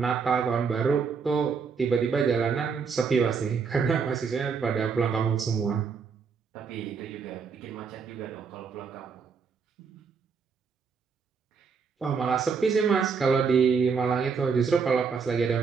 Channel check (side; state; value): left; quieter; 5.7 dB